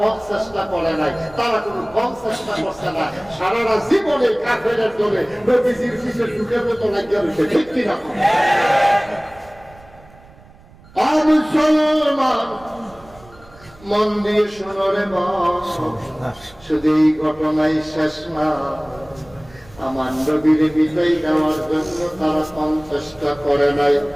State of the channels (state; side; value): noise; right; rumble, 24 dB below the sound